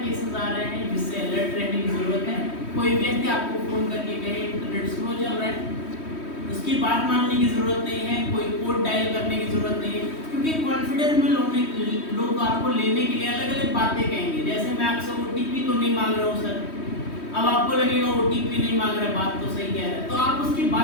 केसेस आ रहे हैं जिससे अलर्ट रहने की जरूरत है। कोई व्यक्ति आपको फोन करके कहे इंटरनेट स्लो चल रहा है, उसकी बात मानने की जरूरत नहीं है, कोई कोड डायल करने की जरूरत नहीं है, क्योंकि कॉन्फिडेंस में लोग आपको लेने के लिए अलग अलग बातें कहेंगे। जैसे मैं आपसे OTP तो नहीं मांग रहा हूँ सर, अब आपको लगेगा OTP नहीं मांग रहा है, बात तो सही कह रहा है, तो आप उसकी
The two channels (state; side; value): late; right; 3.1 ms